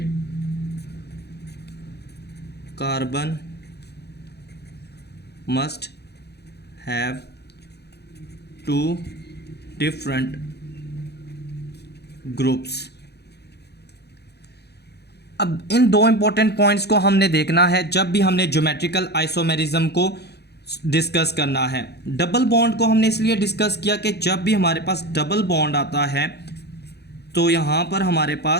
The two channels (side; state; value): right; late; 0.48 ms